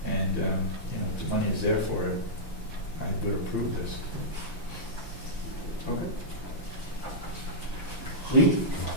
And, if the money is there for it, I would approve this. Okay. Lee?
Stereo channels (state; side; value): late; right; 5.9 ms